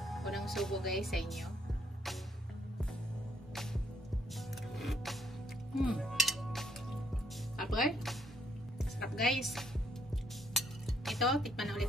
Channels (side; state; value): both; normal; correlation 0.71